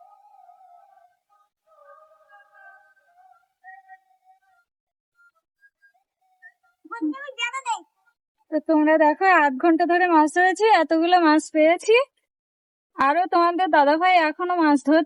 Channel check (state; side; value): identical; both; correlation 1.00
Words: তো তোমরা দেখো 8 ঘন্টা ধরে মাছ ধরেছি, এতগুলো মাছ পেয়েছি। আরো তোমাদের দাদা ভাই এখনো মাছ